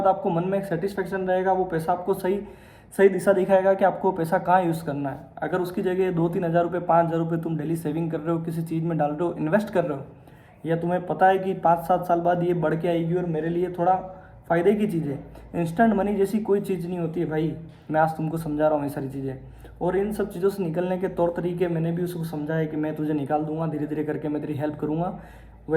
आपको मन में एक सेटिस्फेक्शन रहेगा। वो पैसा आपको सही सही दिशा दिखाएगा कि आपको पैसा कहाँ यूज़ करना है। अगर उसकी जगह 2-3 हज़ार रुपये, 5 हज़ार रुपये तुम डेली सेविंग कर रहे हो, किसी चीज़ में डाल रहे हो, इन्वेस्ट कर रहे हो, या तुम्हें पता है कि 5-7 साल बाद ये बढ़ के आएगी और मेरे लिए थोड़ा फ़ायदे की चीज़ है। इंस्टेंट मनी जैसी कोई चीज़ नहीं होती है भाई, मैं आज तुमको समझा रहा हूँ ये सारी चीज़ें। और इन सब चीज़ों से निकलने के तौर तरीके मैंने भी उसको समझाया कि मैं तुझे निकाल दूंगा, धीरे धीरे करके मैं तेरी हेल्प करूँगा।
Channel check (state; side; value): identical; both; correlation 1.00